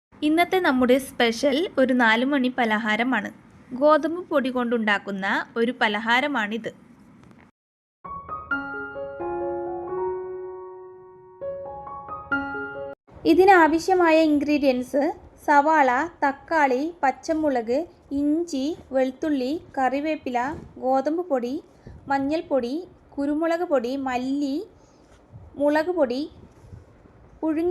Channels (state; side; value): identical; both; correlation 1.00